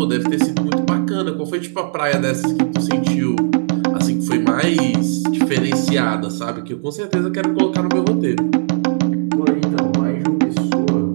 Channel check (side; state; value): left; silent; digital silence